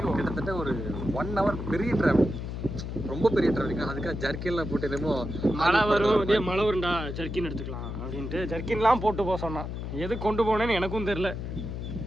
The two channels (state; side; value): noise; left; hum, 6 dB below the sound